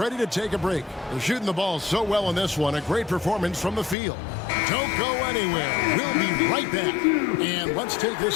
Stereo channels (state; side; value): drops out; right; at 4.0 s